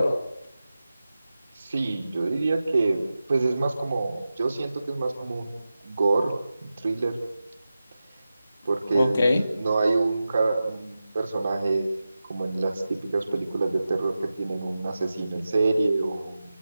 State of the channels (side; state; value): both; inverted; correlation -0.94